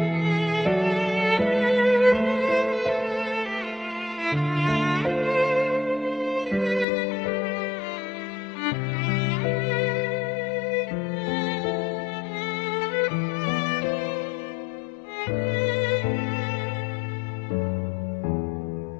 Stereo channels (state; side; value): drops out; right; at 6.9 s